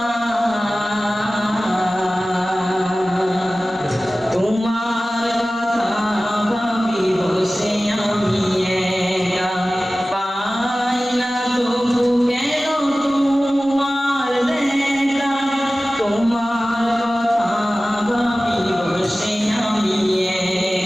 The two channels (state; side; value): normal; both; correlation 0.96